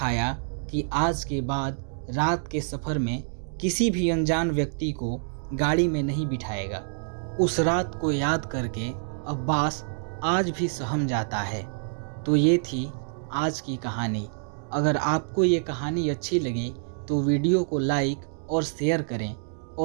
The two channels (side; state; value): left; silent; digital silence